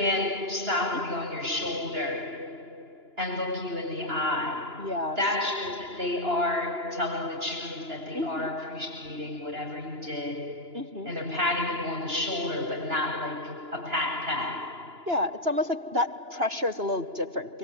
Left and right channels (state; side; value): late; left; 2.9 ms